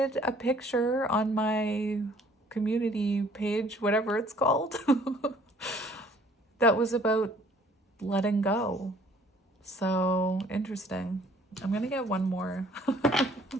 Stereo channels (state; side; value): normal; both; correlation 0.58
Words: a picture on my community page, whatever it's called, that was about letting go. So interesting. I'm going to get one more.